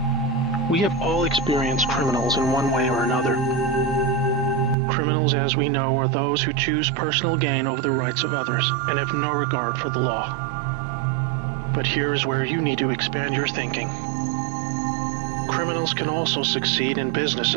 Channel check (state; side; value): drops out; left; at 4.8 s